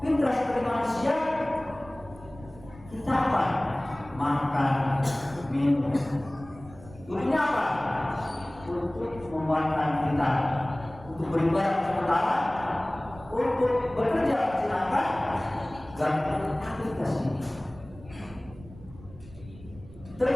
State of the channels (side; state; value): right; noise; rumble, 19 dB below the sound